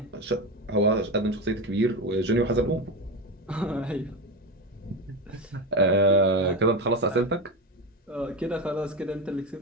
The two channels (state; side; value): normal; both; correlation 0.19